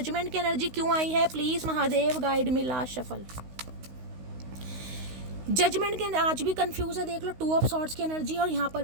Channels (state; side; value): late; left; 16 ms